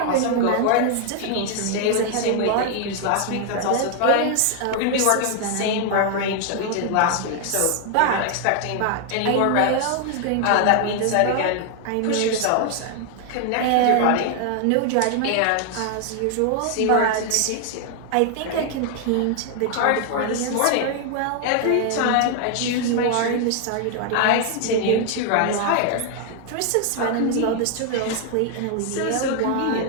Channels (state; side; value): different; both; correlation 0.00